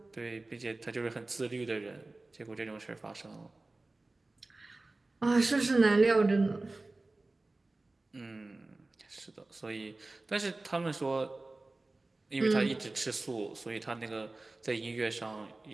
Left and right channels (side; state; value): left; quieter; 3.1 dB